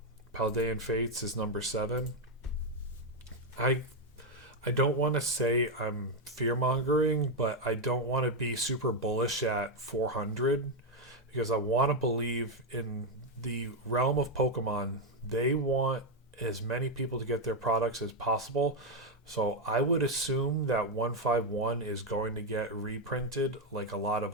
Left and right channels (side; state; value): both; normal; correlation 0.03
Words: Paldean Fates is number 7. I don't want to say I'm fear mongering, but I don't want to be super bullish at 400 because I want to believe in the realm of Pokemon. They want as many people to get their products as possible. So I would assume that 151 is going to get reprinted like a lot